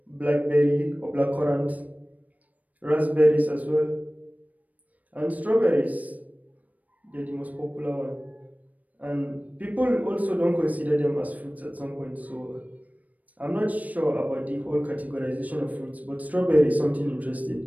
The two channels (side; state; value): left; late; 0.074 ms